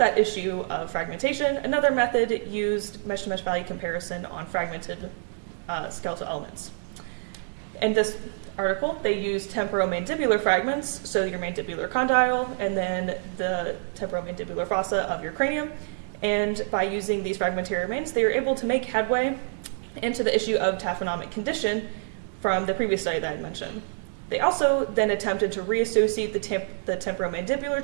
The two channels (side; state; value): left; silent; digital silence